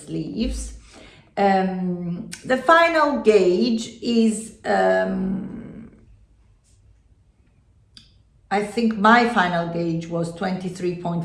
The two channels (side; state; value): both; identical; correlation 1.00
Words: The final gauge is, I think my final gauge was